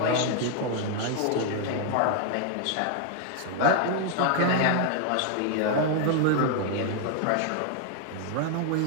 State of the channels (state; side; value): different; both; correlation 0.00